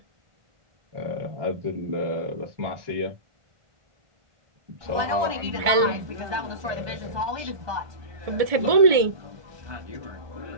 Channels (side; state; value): left; late; 1.7 ms